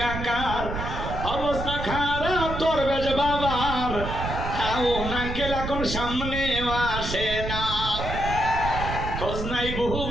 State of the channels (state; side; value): noise; right; rumble, 5 dB below the sound